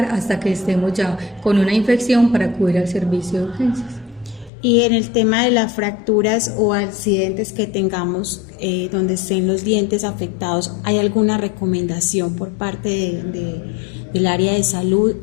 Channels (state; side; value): drops out; right; at 4.5 s